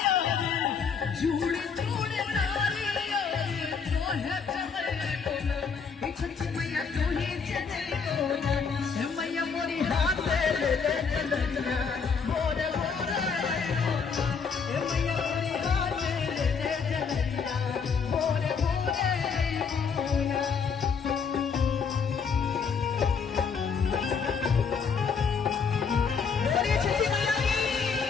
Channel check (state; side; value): quieter; right; 5.8 dB